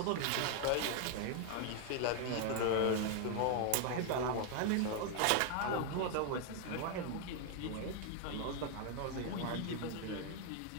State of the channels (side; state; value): both; different; correlation 0.00